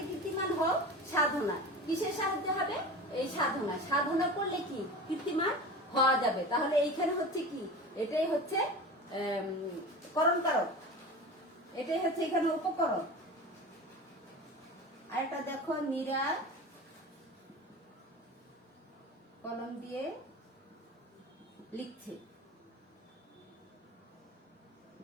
কীর্তিমান হও সাধনা। কিসের সাহায্য হবে? এই সাধনা। সাধনা করলে কি? কীর্তিমান হওয়া যাবে। তাহলে এইখানে হচ্ছে কি? এটাই হচ্ছে করণ কারক, এটাই হচ্ছে এখানে উপকরণ। আরেকটা দেখো, মীরা কলম দিয়ে লিখছে।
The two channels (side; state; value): both; normal; correlation 0.32